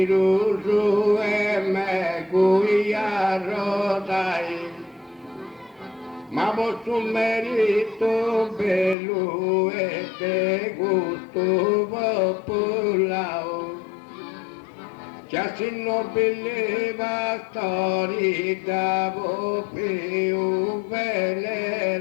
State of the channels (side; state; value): right; drops out; at 9.0 s